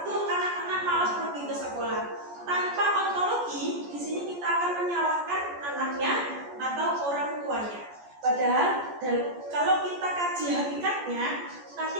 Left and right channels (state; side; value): late; left; 14 ms